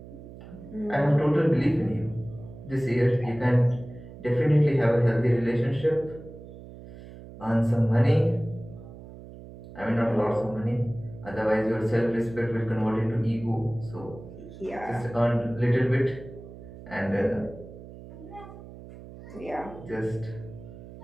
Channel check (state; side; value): noise; right; hum, 16 dB below the sound